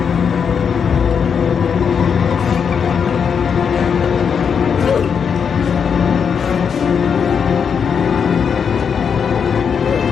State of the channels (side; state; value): right; quieter; 6.8 dB